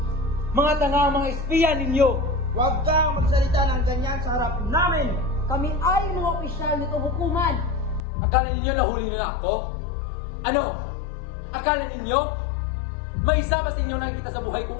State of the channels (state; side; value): drops out; right; at 8.0 s